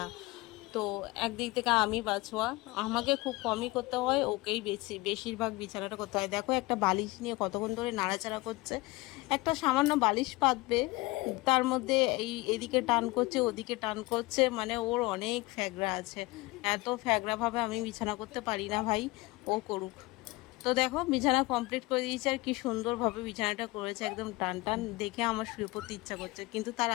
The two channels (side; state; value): right; quieter; 22.2 dB